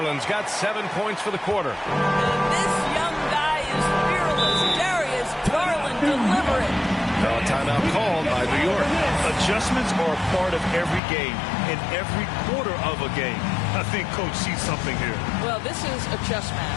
got 7 points for the quarter. And this young guy is fearless. Darius Garland delivering. Now a timeout called by New York. Adjustments are a part of every game, in every quarter of a game. I think Coach sees something here. Well, this is a chess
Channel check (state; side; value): drops out; right; at 11.0 s